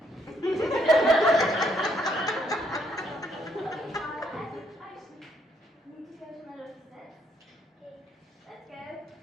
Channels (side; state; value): both; normal; correlation 0.71